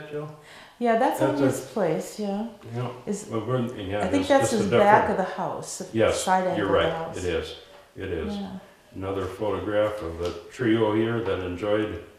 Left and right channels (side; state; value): both; identical; correlation 1.00